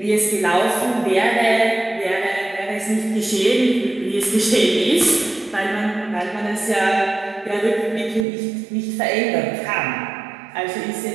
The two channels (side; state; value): left; drops out; at 8.2 s